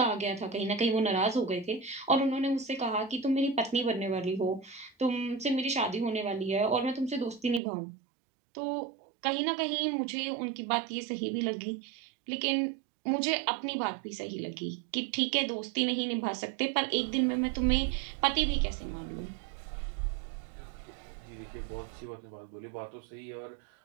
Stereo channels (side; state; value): left; drops out; at 7.6 s